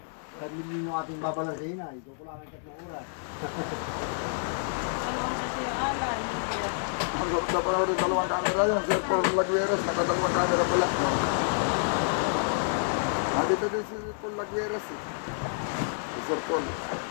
Kami nyo ating babalansin na. Ito ko lang ang 3 oras. Ang ganda pa rin dalawang camera yan. Sir Paul Lagueras, nakadalawang camera pala. Dito din si Paul Lagueras eh. Si Sir Paul.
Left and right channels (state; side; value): silent; right; 59 dB below the other